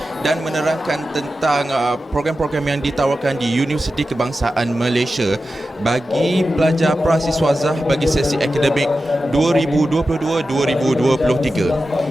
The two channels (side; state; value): both; normal; correlation 0.92